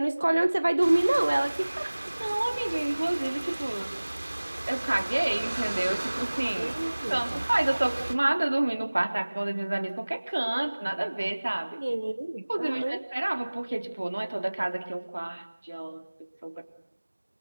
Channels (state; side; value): inverted; both; correlation -1.00